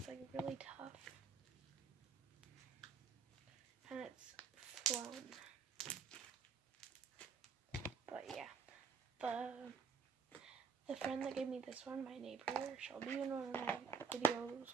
like really tough. And it's foam. But yeah, the friend that gave me this one, my neighbor, she'll be in one of my videos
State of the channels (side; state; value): left; quieter; 5.8 dB